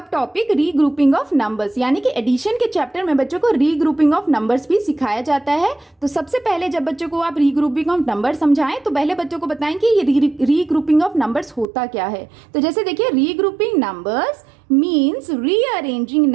टॉपिक रीग्रुपिंग ऑफ नंबर्स, यानी कि एडिशन के चैप्टर में बच्चों को रीग्रुपिंग ऑफ नंबर्स भी सिखाया जाता है। तो सबसे पहले जब बच्चों को आप रीग्रुपिंग ऑफ नंबर्स समझाएं तो पहले बच्चों को बताएं कि ये रीग्रुपिंग ऑफ नंबर्स होता क्या है। तो जैसे देखिए, regrouping numbers means rearranging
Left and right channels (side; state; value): left; drops out; at 11.7 s